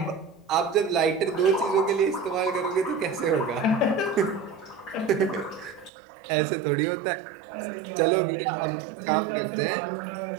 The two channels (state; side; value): drops out; left; at 5.9 s